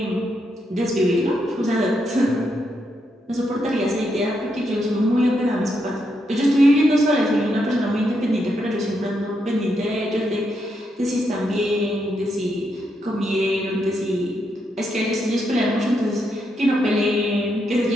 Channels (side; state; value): both; normal; correlation 0.80